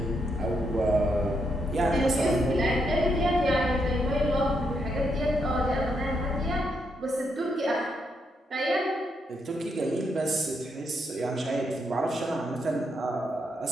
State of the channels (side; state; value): both; normal; correlation 0.79